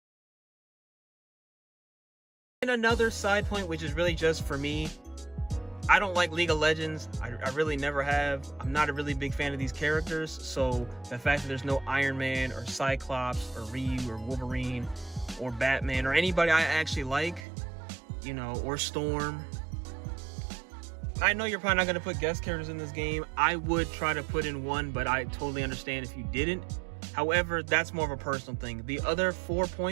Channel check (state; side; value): drops out; left; at 17.4 s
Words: And And another side point, which is really just for me, I don't like League of Legends. I really never have. I'm not a really big fan of these characters. So the fact that there's no Iron Man or Cyclops or Ryu or Wolverine or Batman or anybody I actually like, you know, or Storm. I know you're probably not going to put guest characters in this game. I would try to put in one, but I totally understand if you didn't. However, that's more of a personal thing. The other 4